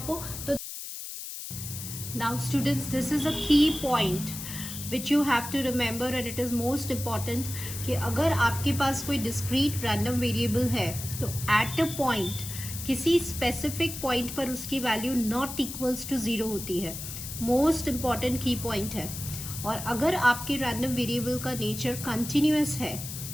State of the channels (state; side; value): noise; left; hiss, 8 dB below the sound